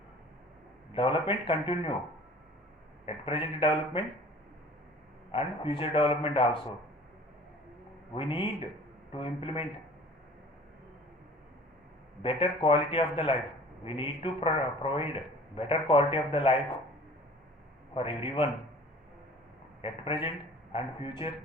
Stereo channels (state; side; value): normal; both; correlation 0.47